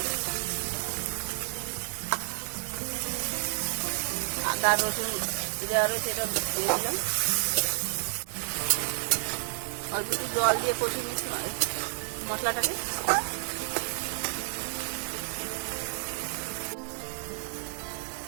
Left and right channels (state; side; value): silent; left; digital silence